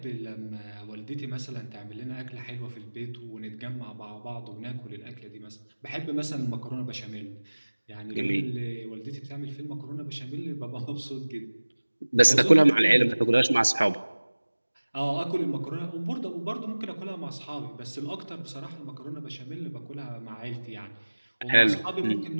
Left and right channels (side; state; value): both; inverted; correlation -1.00